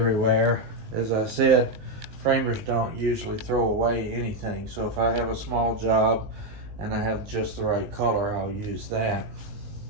As I said, framers don't usually throw away anything, so if I have a small job and I have just the right color, I'll use that.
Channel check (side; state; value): left; late; 19 ms